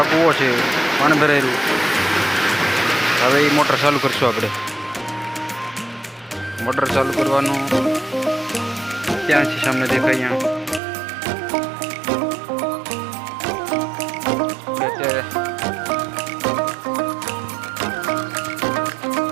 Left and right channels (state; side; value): drops out; left; at 10.8 s